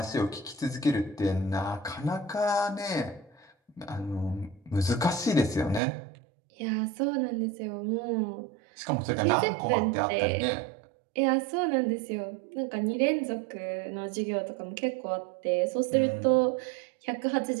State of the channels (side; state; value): left; drops out; at 5.8 s